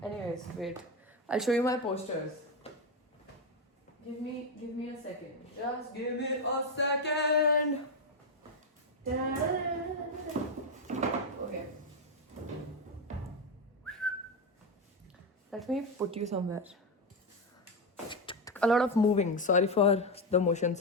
Anyways, wait. I'll show you my posters. Give me a second. Just give me a second. Okay. Let me put you somewhere. A lot of moving. Sorry for the motion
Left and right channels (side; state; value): both; normal; correlation 0.09